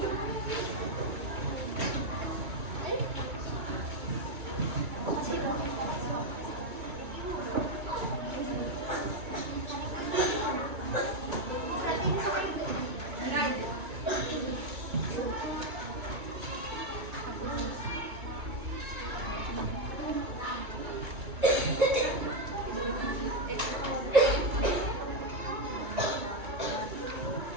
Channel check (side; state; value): left; late; 2.2 ms